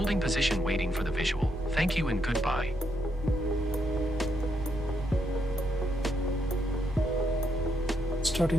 position waiting for the visual. Thank you and goodbye.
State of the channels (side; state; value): both; normal; correlation 0.78